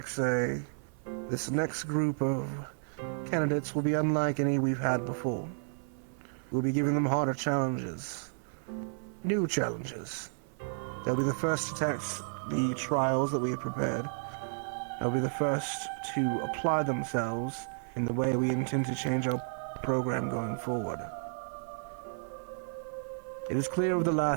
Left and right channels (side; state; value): left; silent; 56 dB below the other